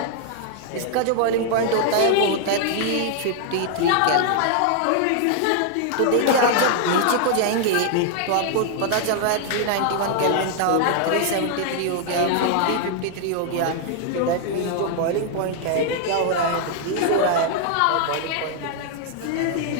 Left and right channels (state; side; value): different; both; correlation 0.00